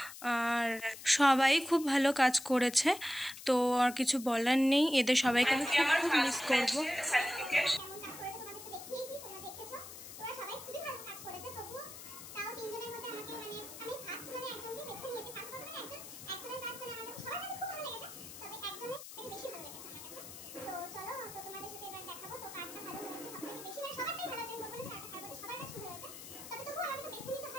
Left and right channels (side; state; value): left; noise; hiss, 13 dB below the sound